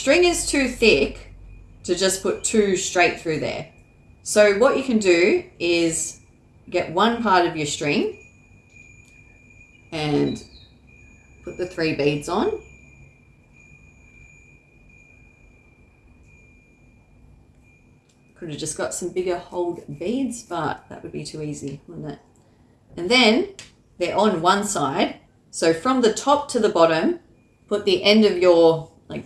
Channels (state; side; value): identical; both; correlation 1.00